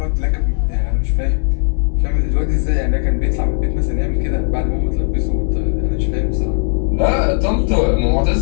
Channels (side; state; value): right; silent; 68 dB below the other